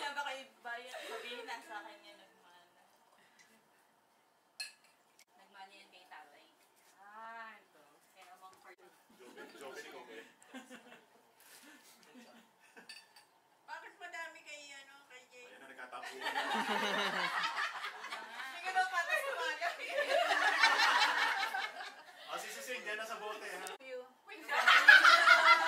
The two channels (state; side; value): identical; both; correlation 1.00